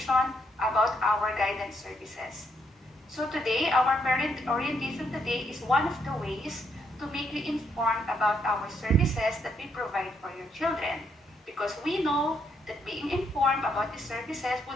about our guidance services. So today, our parent orientation today is one of the ways to make you informed about our services that we provide for your children. Because we know that being informed about the services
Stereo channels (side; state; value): both; normal; correlation 0.75